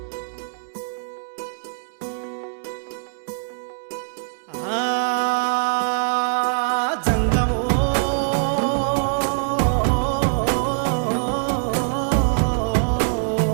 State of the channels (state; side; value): silent; left; digital silence